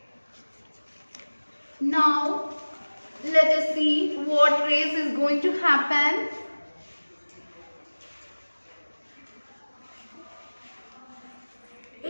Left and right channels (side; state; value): both; inverted; correlation -1.00